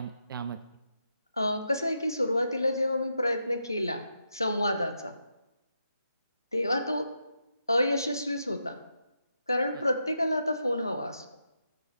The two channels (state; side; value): inverted; both; correlation -0.84